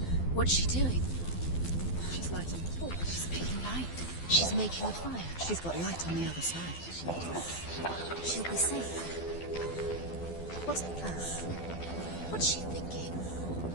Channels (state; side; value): late; right; 12 ms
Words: What's she doing? She's lighting the torch. She's making light. She's making a fire. She's got light on the other side. She'll be safe. What's the plan? What's she thinking?